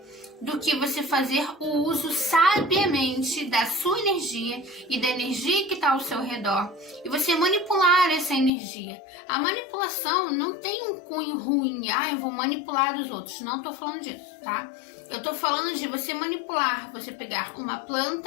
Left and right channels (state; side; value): drops out; right; at 8.5 s